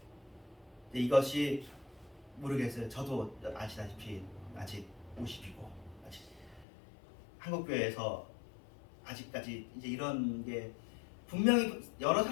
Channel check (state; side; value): drops out; right; at 6.7 s